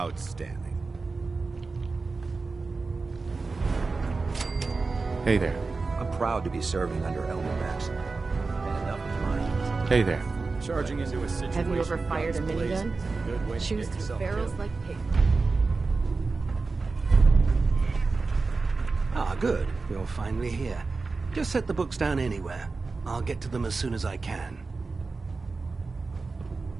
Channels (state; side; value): quieter; left; 4.0 dB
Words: Hey there. I'm proud to be serving under Elder Maxson. And enough of mine. Hey there. Charging into a situation. Have you ever fired a guns blazing minigun? is a good way to Shoots get through yourself barrels killed. like paper. Ah, good. You're finally here. Just set the books down anywhere. I'll get to them as soon as I can.